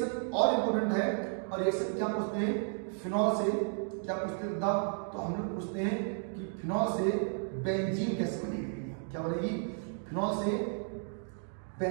और इंपोर्टेंट है, और रिएक्शन क्या पूछते हैं, फिनॉल से क्या पूछते हैं, तो हम लोग पूछते हैं कि फिनॉल से बेंजीन कैसे बनेगी, क्या बनेगी, फिनॉल से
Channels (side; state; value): left; silent; 56 dB below the other